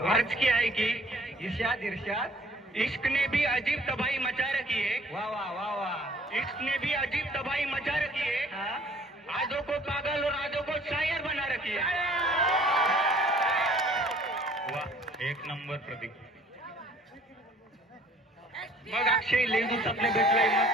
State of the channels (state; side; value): normal; both; correlation 0.55